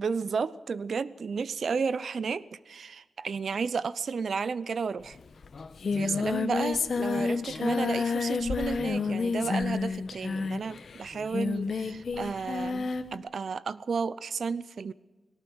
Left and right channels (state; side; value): normal; both; correlation 0.85